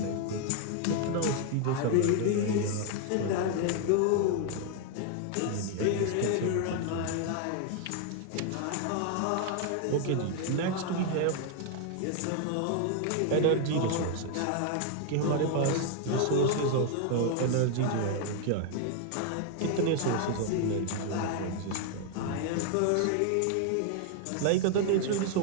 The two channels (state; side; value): different; both; correlation 0.00